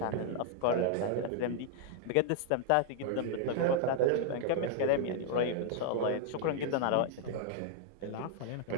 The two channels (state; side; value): different; both; correlation 0.00